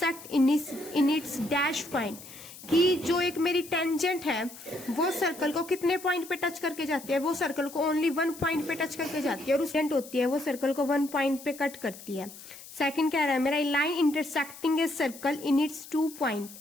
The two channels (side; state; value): left; noise; hiss, 16 dB below the sound